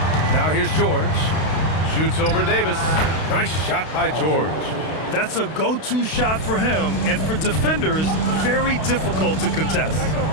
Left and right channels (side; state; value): right; late; 32 ms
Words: Now here's George. Shoots over Davis. Nice shot by George. That's a go-to shot for him, and for defenders, very difficult to contest.